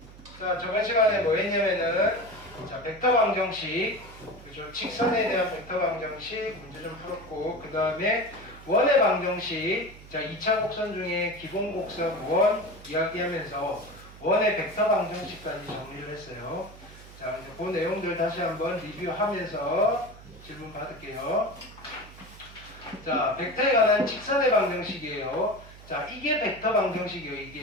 자, 저번 시간에 뭐 했냐면은, 자, 벡터 방정식, 그죠? 직선에 대한 벡터 방정식 문제 좀 풀었고, 그 다음에 원의 방정식, 자, 2차 곡선 중에 기본 곡선 원 이야기하면서 원의 벡터 방정식까지 정리를 했어요. 자, 이제 그 내용들 다시 한번 리뷰하면서 질문 받을게요. 자, 벡터에 관한 직선의 방정식이에요. 자, 이게 벡터 방정식이에요.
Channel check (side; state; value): right; noise; hum, 19 dB below the sound